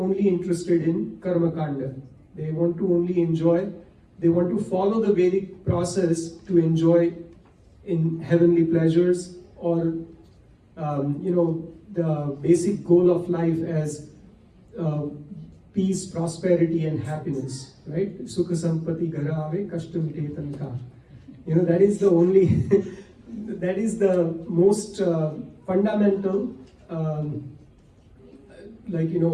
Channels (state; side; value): identical; both; correlation 1.00